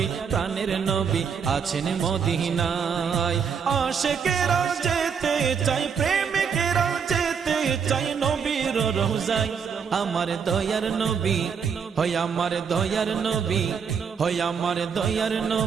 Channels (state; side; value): quieter; left; 6.6 dB